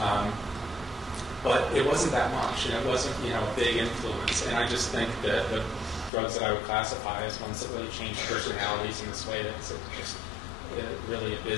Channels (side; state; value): right; drops out; at 6.1 s